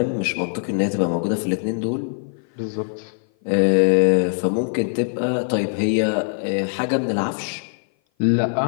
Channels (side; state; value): right; silent; 57 dB below the other